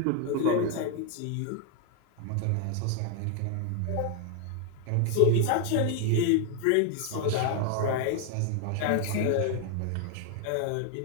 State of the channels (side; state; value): both; different; correlation 0.00